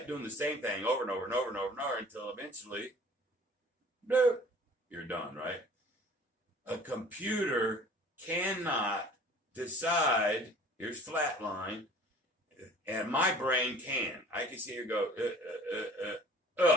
doing the same thing over and over and over and over and over until eventually, bloop, you're done, right? A computer cannot decide, here's flat line, and my brain can. I can see it go,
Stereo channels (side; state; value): both; normal; correlation 0.49